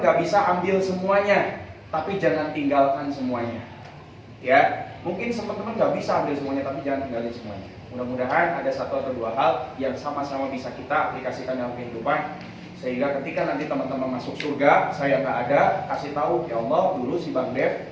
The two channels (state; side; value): identical; both; correlation 1.00